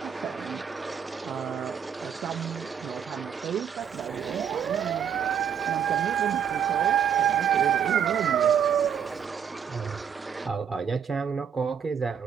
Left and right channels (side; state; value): left; quieter; 8.1 dB